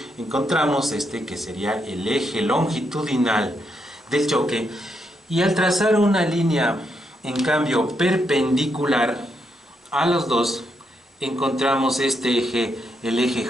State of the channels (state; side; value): normal; both; correlation 0.80